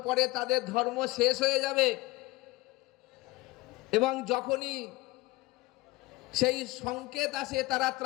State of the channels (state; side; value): quieter; right; 20.7 dB